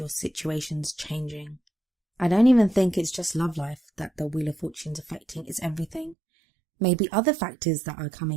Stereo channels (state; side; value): drops out; left; at 6.2 s